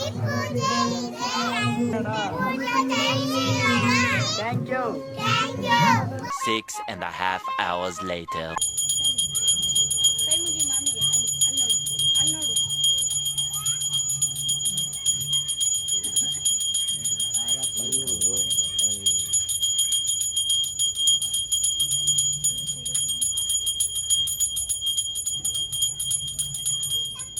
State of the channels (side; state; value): both; identical; correlation 1.00